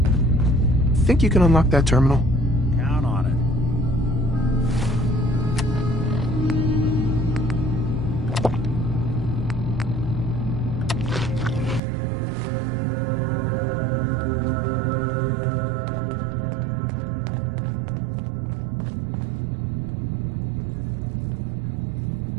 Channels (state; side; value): drops out; left; at 11.8 s